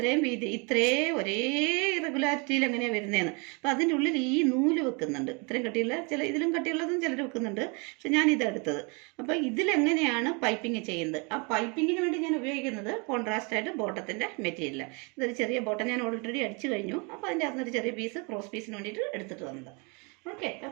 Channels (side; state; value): left; quieter; 31.8 dB